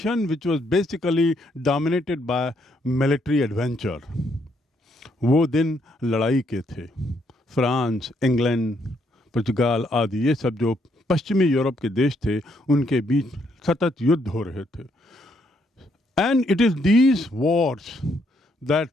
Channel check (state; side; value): normal; both; correlation 0.73